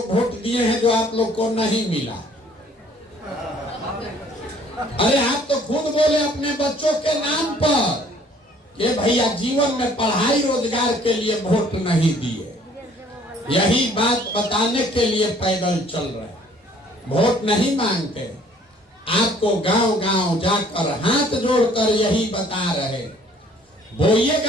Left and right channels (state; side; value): normal; both; correlation 0.57